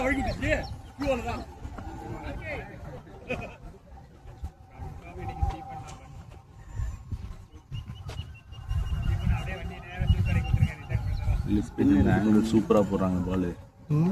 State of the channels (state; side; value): identical; both; correlation 1.00